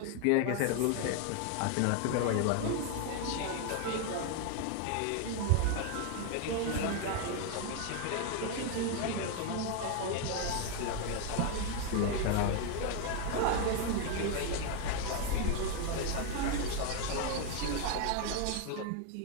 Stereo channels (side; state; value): both; different; correlation 0.01